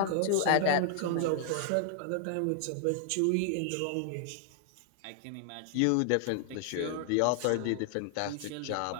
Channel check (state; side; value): different; both; correlation -0.01